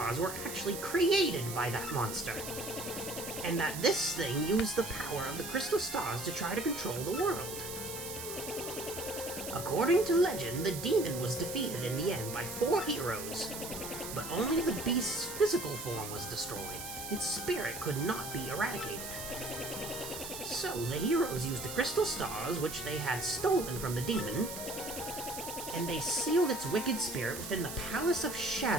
were actually created by that monster, and that this thing used the power of the crystal stars to try to control the world. According to legend, the demon was defeated in the end by 4 heroes, but only the beast's physical form was destroyed. Its spirit could not be eradicated. So the heroes used the crystal stars, which they had stolen from the demon, and they sealed its wicked spirit within the Palace of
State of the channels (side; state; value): right; noise; hiss, 8 dB below the sound